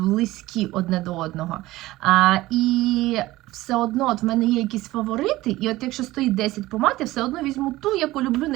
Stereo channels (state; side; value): quieter; left; 17.6 dB